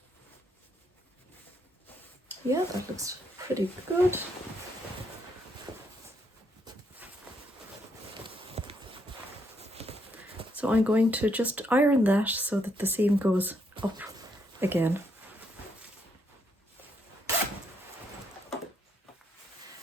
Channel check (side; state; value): both; normal; correlation 0.75